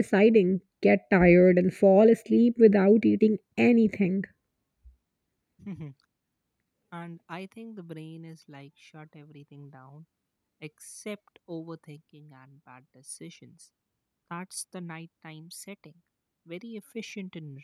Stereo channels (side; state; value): both; identical; correlation 1.00